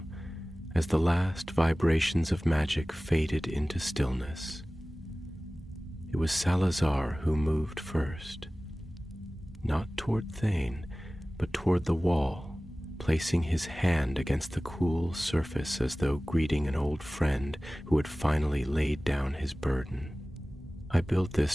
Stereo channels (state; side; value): normal; both; correlation 0.98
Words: as the last vibrations of magic faded into stillness. It was Salazar who moved first, not toward Thane, but toward the wall, placing his hand against the cool surface as though greeting an old friend who had finally laid down his burden. "I built this